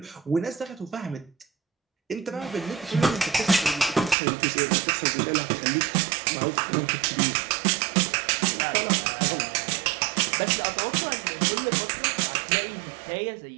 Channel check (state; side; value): drops out; left; at 4.2 s